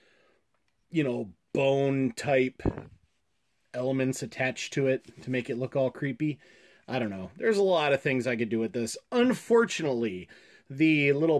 you know, bone type elements attached to it to make it look all creepy. I don't know. There's a lot of things I could do with this. Unfortunately, the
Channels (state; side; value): identical; both; correlation 1.00